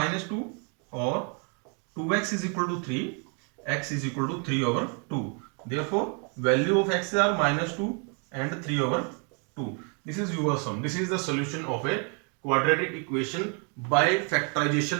और 2x is equal to 3, x is equal to 3/2। Therefore, value of x are -2 and 3/2. This is your sum. This is the solution of a quadratic equation by factorization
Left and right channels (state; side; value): quieter; left; 37.7 dB